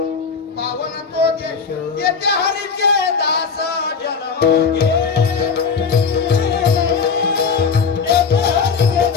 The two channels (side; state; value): right; quieter; 5.6 dB